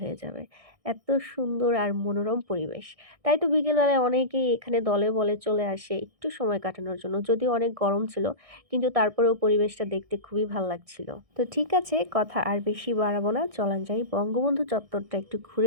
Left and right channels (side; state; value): left; late; 1.6 ms